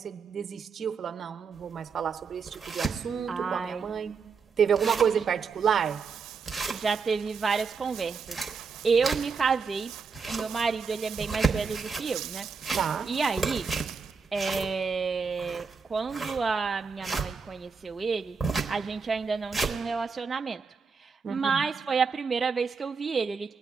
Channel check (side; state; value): left; quieter; 5.3 dB